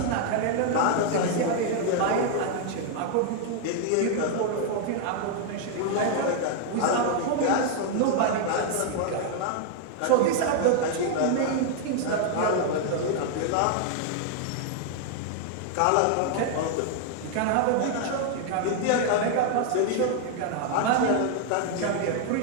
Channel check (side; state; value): both; different; correlation 0.00